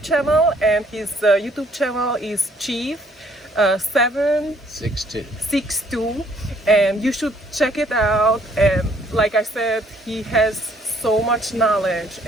channel, and his YouTube channel is Chief 762, 6'2". and you should check it out. And like I said, he has so much knowledge,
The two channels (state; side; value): normal; both; correlation 0.63